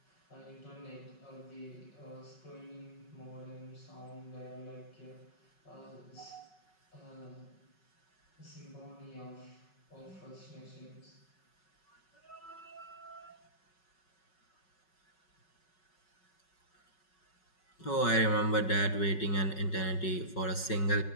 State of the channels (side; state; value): right; late; 5.4 ms